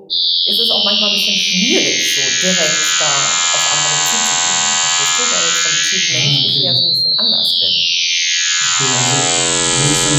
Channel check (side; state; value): both; identical; correlation 1.00